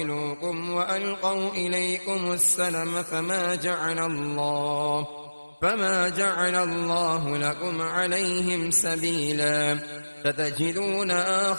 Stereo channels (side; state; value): both; inverted; correlation -1.00